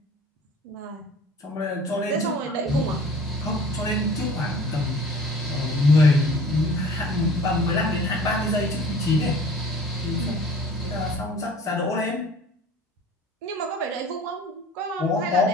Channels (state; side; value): normal; both; correlation 0.46